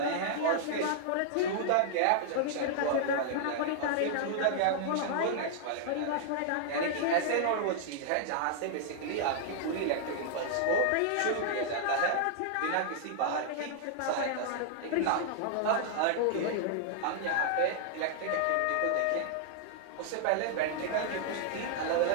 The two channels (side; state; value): both; different; correlation -0.01